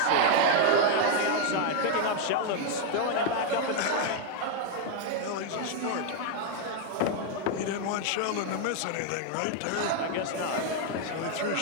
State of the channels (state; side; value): different; both; correlation 0.00